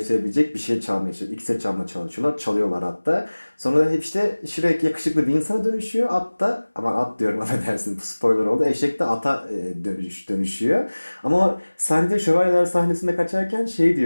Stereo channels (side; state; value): both; inverted; correlation -1.00